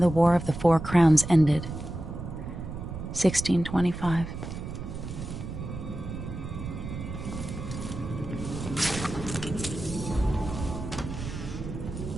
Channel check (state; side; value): noise; right; rumble, 8 dB below the sound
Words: the War of the Four Crowns ended. 1625.